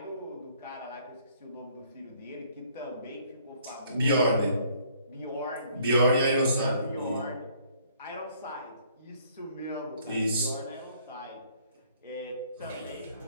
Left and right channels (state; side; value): inverted; both; correlation -0.62